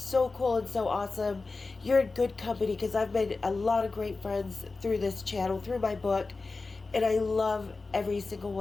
cool and so awesome. You're in good company because I've made a lot of great friends through this channel, through my book, and I love every single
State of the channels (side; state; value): right; quieter; 3.8 dB